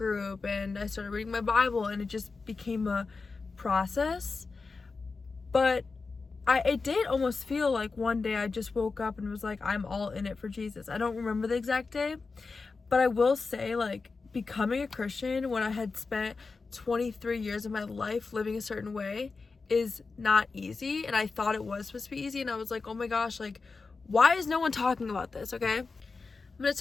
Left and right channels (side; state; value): right; quieter; 4.3 dB